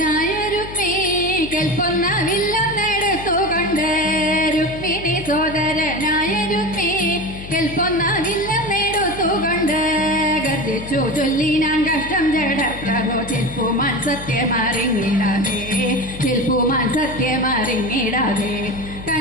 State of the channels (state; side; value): noise; left; hum, 12 dB below the sound